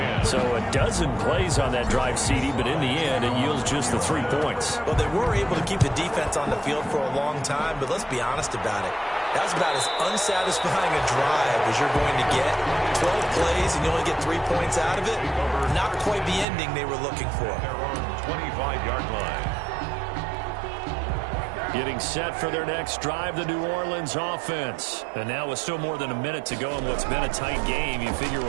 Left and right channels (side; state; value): left; drops out; at 16.4 s